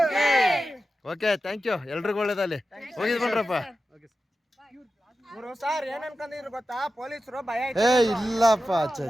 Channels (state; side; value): normal; both; correlation 0.92